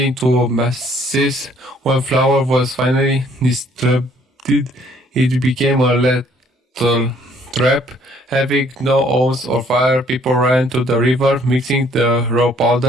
into masses. When flour was finally distributed, it became a lethal trap. Having no oars or fire, people ran to the river, mixing the raw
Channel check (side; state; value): both; normal; correlation 0.62